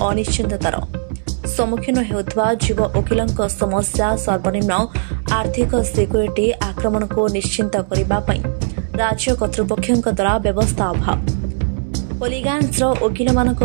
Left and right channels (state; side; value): silent; left; 64 dB below the other